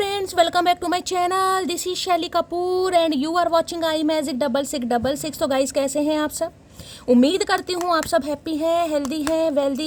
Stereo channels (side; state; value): both; identical; correlation 1.00